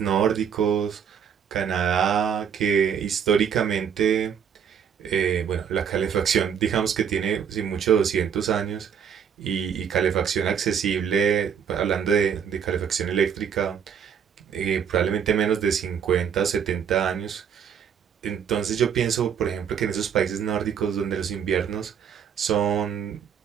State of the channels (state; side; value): quieter; left; 7.8 dB